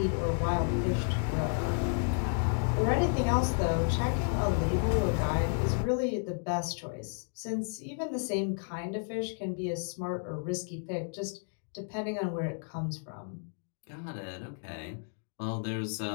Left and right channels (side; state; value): right; silent; 56 dB below the other